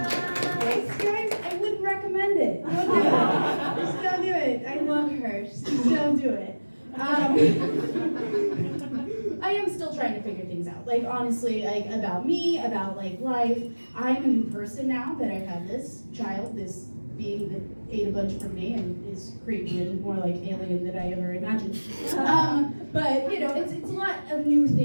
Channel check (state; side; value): inverted; both; correlation -1.00